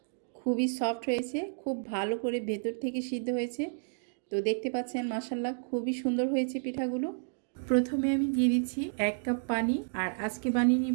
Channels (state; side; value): silent; left; digital silence